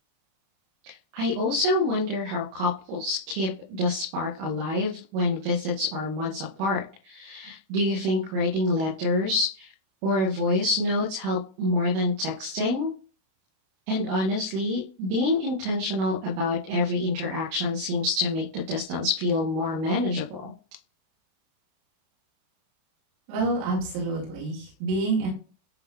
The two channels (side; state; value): left; late; 31 ms